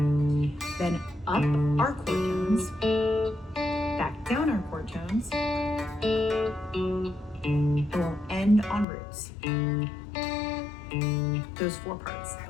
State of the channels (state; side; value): drops out; right; at 8.8 s